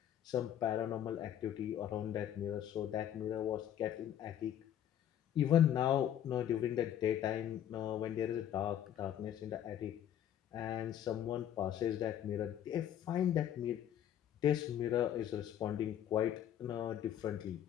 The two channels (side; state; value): right; quieter; 10.5 dB